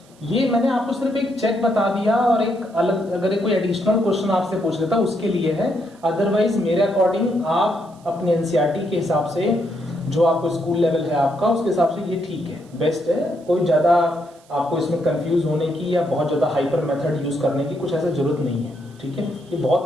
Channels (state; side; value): noise; right; hiss, 30 dB below the sound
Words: ये मैंने आपको सिर्फ एक चेक बता दिया और एक अलग अगर कोई एडिशनल क्वेश्चन आपसे पूछ लेता उसके लिए है, अदरवाइज मेरे अकॉर्डिंग आप अपने एनसीईआरटी के हिसाब से जो आपको स्कूल लेवल है आपका उसके हिसाब से ये ठीक है, बेस्ट है। कोई ज्यादा आपको इसमें कंफ्यूज होने की या बहुत ज्यादा हाइपर मेथड यूज करने की कुछ ऐसा जरूरत नहीं है। ठीक है, ये